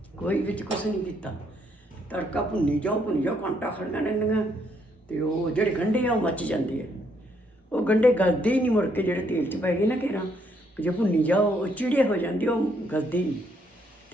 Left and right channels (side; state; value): both; normal; correlation 0.72